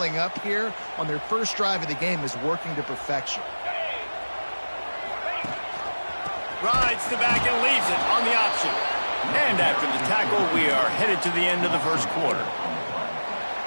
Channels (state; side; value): inverted; both; correlation -1.00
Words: up here on their first drive of the game is working to perfection. Rides the back and leaves it on the option. And after the tackle, we are headed to the end of the first quarter.